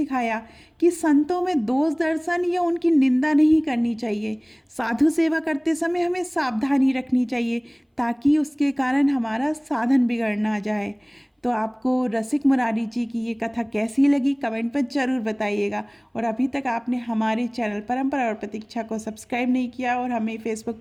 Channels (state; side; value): identical; both; correlation 1.00